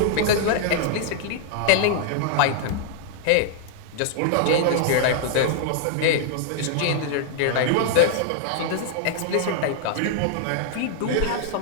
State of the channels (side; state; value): both; different; correlation -0.01